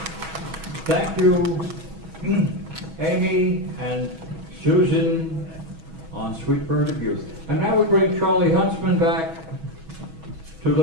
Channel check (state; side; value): late; left; 6.2 ms